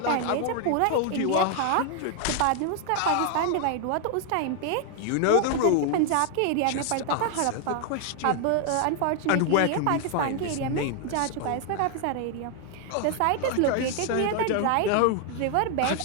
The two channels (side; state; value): both; different; correlation 0.00